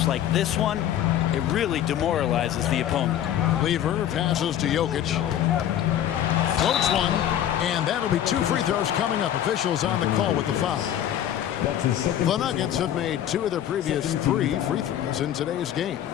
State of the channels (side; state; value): right; quieter; 11.0 dB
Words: like this one, it really demoralizes the opponent. Lever passes to Jokic. Floats one, and that'll be 2 free throws coming up. Officials on the call with the foul. The Nuggets have made 2 of their previous 3 free throws in today's game.